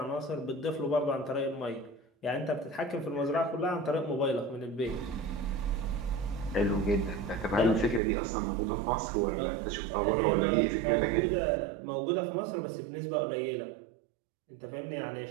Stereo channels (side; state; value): left; drops out; at 8.0 s